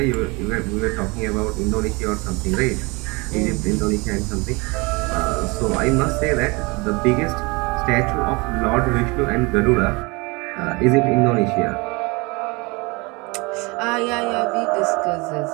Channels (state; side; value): quieter; left; 26.7 dB